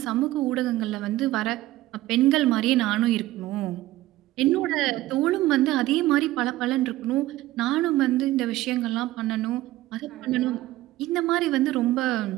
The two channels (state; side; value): quieter; left; 16.4 dB